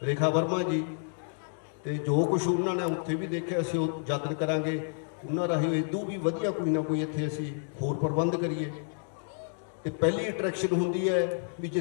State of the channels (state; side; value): silent; right; digital silence